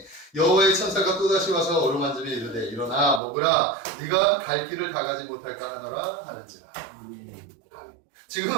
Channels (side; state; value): left; drops out; at 3.2 s